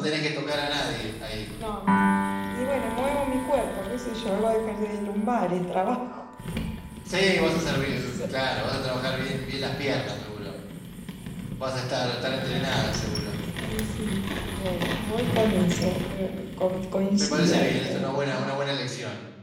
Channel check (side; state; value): both; identical; correlation 1.00